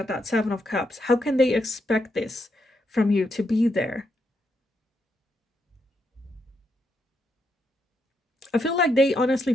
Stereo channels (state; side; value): normal; both; correlation 0.80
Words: that Seven of Cups. How can they expect this from you to be there? I feel like they honestly